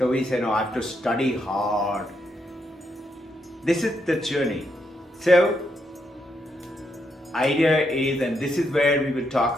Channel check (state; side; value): normal; both; correlation 0.79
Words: we say, no, I have to study hard. This is the journey. So, idea is, and this is where we will talk